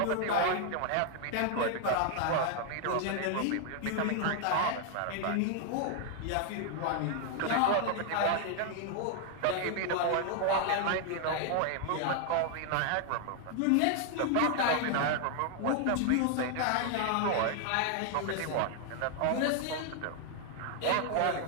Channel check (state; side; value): different; both; correlation 0.00